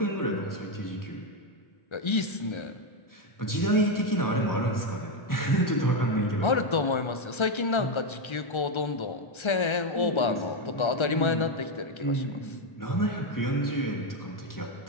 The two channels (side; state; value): right; late; 1.3 ms